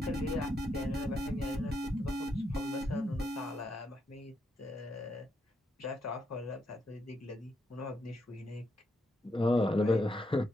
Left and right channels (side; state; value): both; normal; correlation 0.80